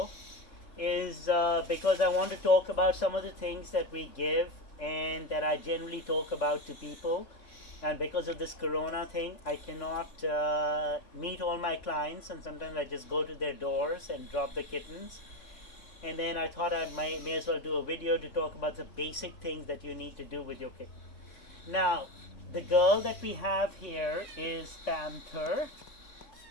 is because I want to talk about some of the things that we give and that I generally talk about to people. And because of this corona thing, I cannot meet all my clients, and sometimes I just go to their doors and drop the kittens. And then I thought I may as well do a video to talk about the basic things that you need to do with your kitten. Now, the girl that we have here is Panther.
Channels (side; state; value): right; late; 3.6 ms